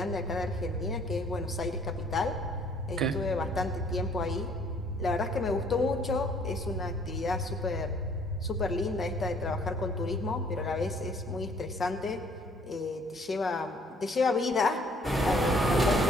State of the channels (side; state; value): both; normal; correlation 0.59